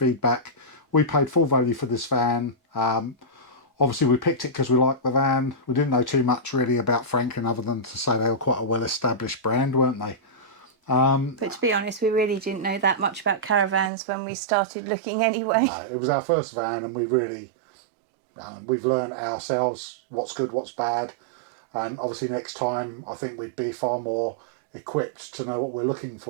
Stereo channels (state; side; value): drops out; left; at 13.9 s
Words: We paid full value for this van. Obviously we picked it because we liked the van. We didn't know too much really about Franklin other than to say they were quite a well-established brand, weren't they? But to be honest, we really didn't know that much about caravans when we started looking anyway. No, it was our first van, and we really, we've learned ourselves what's good, what's bad. And obviously next time I think we'd be far more equipped to know what we're looking